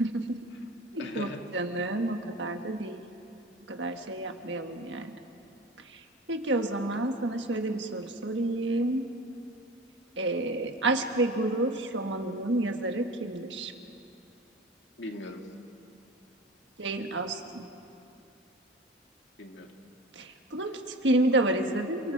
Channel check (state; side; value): normal; both; correlation 0.35